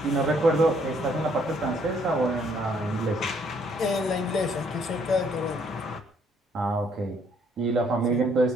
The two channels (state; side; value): normal; both; correlation 0.67